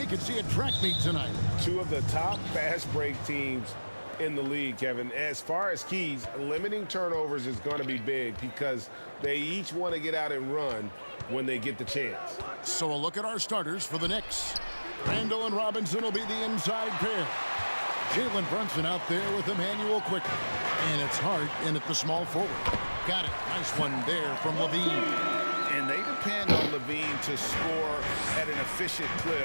could see a track meet tonight. Two of the top fast break teams in the league, Kevin. As far as keys, limiting turnovers is going to be big because they each want to get out and run when they get the chance. So a look at our starters for the Knicks. Randall and Robinson will be the inside pair. Jalen Brunson out there with Emmanuel Quickly. And it's Hart in at the small forward. Got it. Nice one there from LaVine. And they depend on LaVine to score at an efficient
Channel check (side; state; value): both; inverted; correlation -1.00